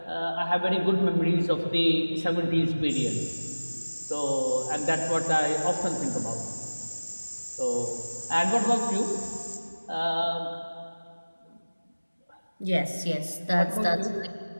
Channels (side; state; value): both; inverted; correlation -1.00